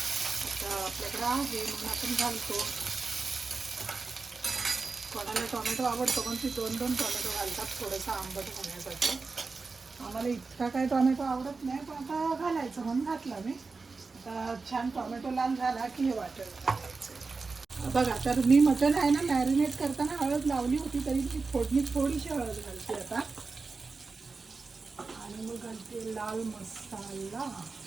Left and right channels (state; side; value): quieter; left; 4.2 dB